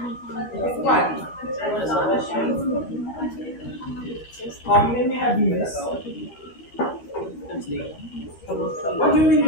What? Maybe have you missed? What do you mean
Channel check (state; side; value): late; right; 13 ms